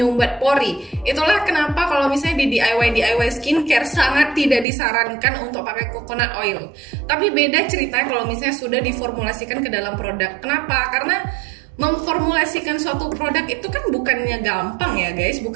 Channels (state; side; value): drops out; left; at 4.7 s